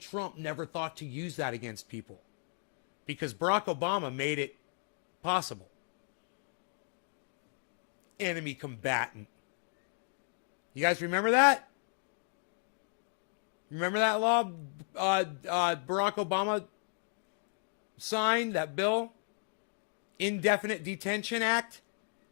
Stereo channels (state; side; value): silent; right; 55 dB below the other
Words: Trump never thought to use that against people because Barack Obama made it possible. Enemy combatant. You guys remember that? Remember that law Barack Obama signed, that bill? Indefinite Detention Act?